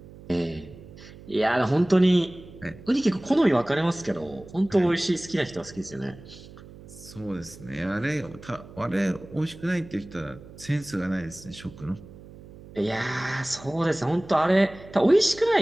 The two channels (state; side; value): noise; right; hum, 18 dB below the sound